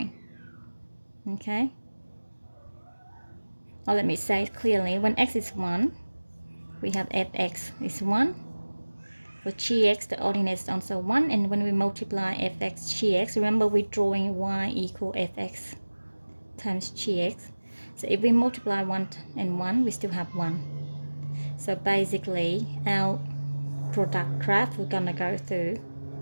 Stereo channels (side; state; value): both; inverted; correlation -1.00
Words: Okay. Or let me say it clearly, when x is 1, we have fx is 1. For gx, the ordinate is also 1. And when we multiply fx, gx, remember we're drawing y equal fx times gx. So if we multiply 1 and 1, we still have 1. So basically, our product graph, we're going to go through